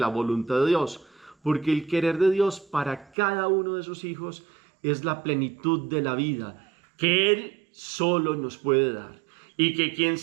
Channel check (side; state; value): left; drops out; at 3.1 s